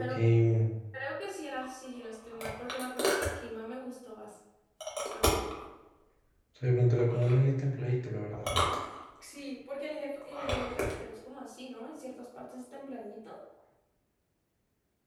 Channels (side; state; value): both; identical; correlation 1.00